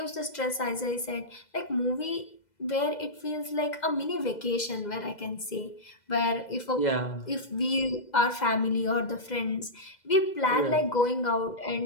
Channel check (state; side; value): late; right; 2.0 ms